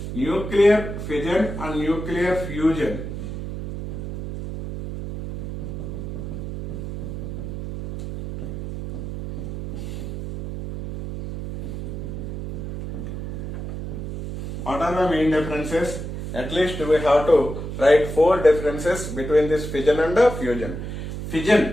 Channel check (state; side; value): noise; right; hum, 7 dB below the sound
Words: nuclear fission and nuclear fusion. What are the main differences? At least we have to write 4 differences between this fission and fusion.